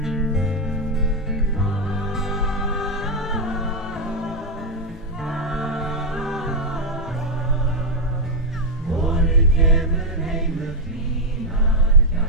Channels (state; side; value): normal; both; correlation 0.04